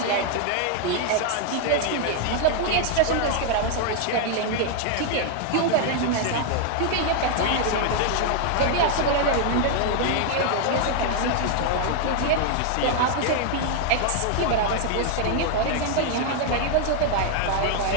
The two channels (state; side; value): different; both; correlation 0.00